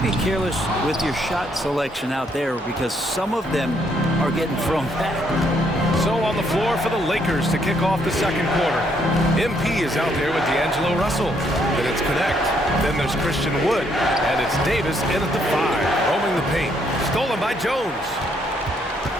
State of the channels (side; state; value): both; normal; correlation 0.71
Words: be careless with your shot selection out there because some of them are getting thrown back. So on the floor for the Lakers to kick off the second quarter. MP is out there with D'Angelo Russell. Then it's Connect. Then there's Christian Wood. And it's Davis in at the 5, roaming the paint. Stolen by Jones.